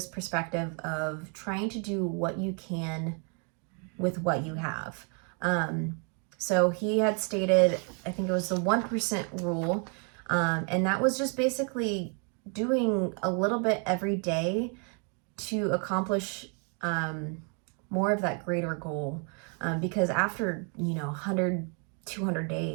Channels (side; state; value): left; quieter; 38.9 dB